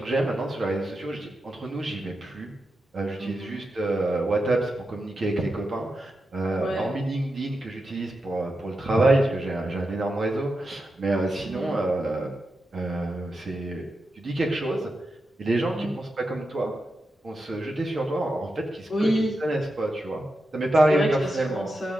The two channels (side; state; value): both; normal; correlation 0.89